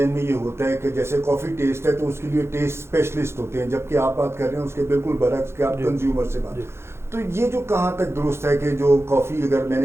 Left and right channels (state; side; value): late; left; 0.12 ms